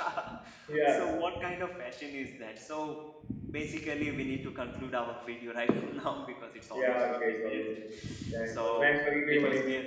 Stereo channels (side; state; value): both; identical; correlation 1.00